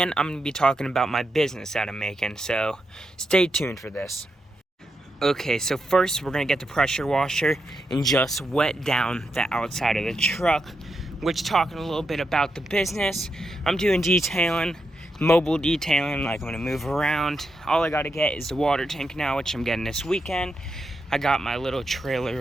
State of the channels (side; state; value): both; normal; correlation 0.85